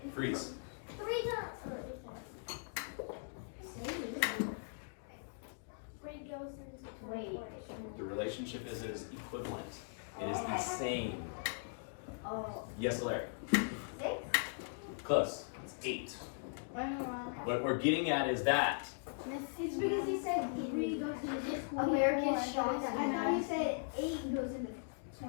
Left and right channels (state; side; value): silent; right; digital silence